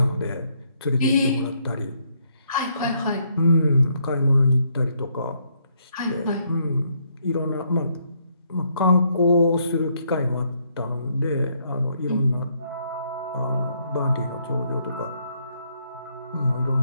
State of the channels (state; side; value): inverted; both; correlation -0.72